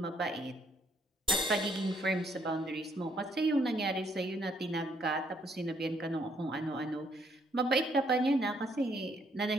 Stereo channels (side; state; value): both; normal; correlation 0.69